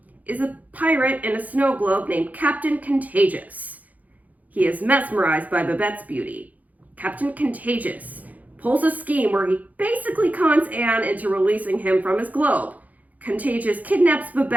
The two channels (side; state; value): left; late; 0.078 ms